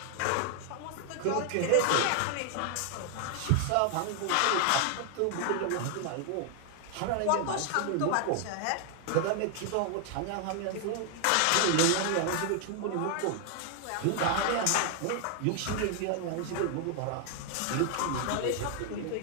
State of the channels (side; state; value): both; different; correlation 0.00